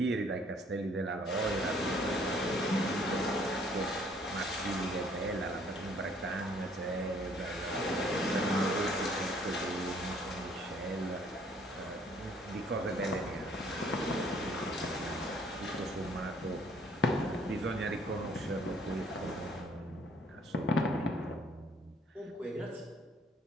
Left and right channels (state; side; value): normal; both; correlation 0.61